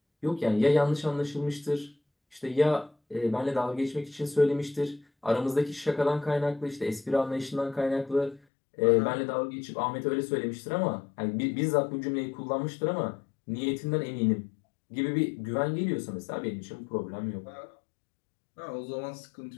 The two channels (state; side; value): drops out; right; at 8.4 s